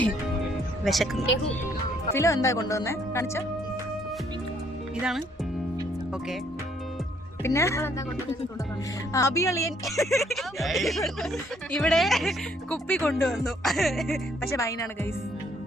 വിശക്കുന്നു. ഫിലോ എന്താ കൊണ്ടുവന്നേ? കാണിച്ച ഇതാണ്. ഓക്കെ, പിന്നെ അഭിയളിയൻ ഇവിടെ കുപ്പി കൊണ്ടുവന്നു, പക്ഷെ വൈനാണ് ഗൈസ്,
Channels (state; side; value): normal; both; correlation 0.66